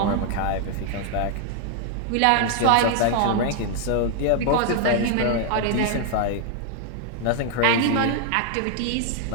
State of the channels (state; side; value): different; both; correlation 0.00